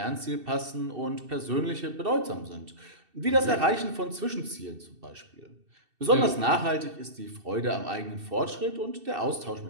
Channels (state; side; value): late; left; 2.7 ms